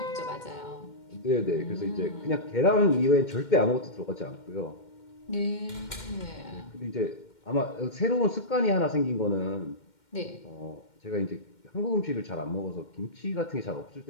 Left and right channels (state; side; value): late; right; 2.1 ms